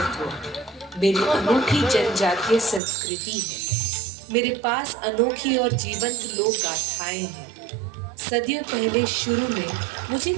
मेरी अनोखी जनजातीय संस्कृति है। मेरे पास अनोखी और जीवंत लोक गाथाएं हैं। सदियों पहले शुरू में मुझे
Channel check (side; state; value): left; drops out; at 2.8 s